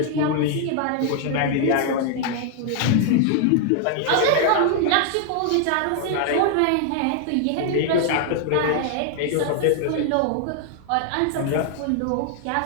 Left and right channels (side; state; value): both; different; correlation 0.00